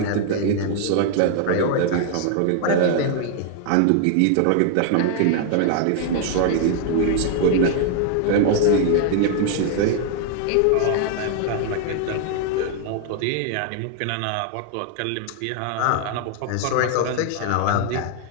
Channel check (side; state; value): both; different; correlation 0.00